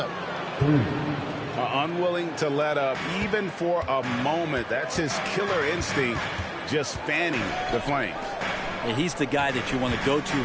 Unwilling to let up even for a moment. That's his killer instinct, just fanning the flames. He's the guy that you want to go to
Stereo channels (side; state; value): both; identical; correlation 1.00